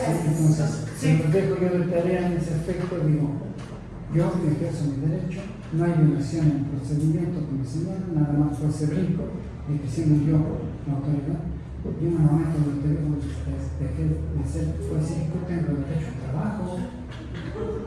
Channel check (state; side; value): identical; both; correlation 1.00